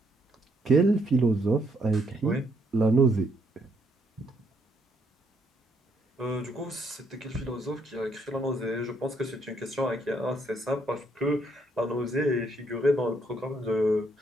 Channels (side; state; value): both; normal; correlation 0.72